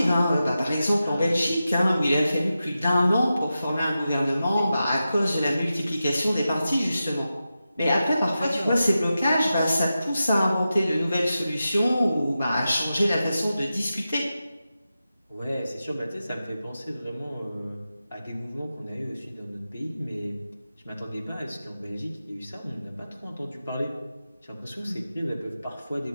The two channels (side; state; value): both; inverted; correlation -0.92